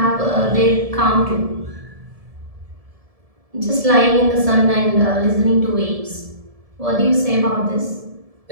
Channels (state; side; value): late; left; 1.7 ms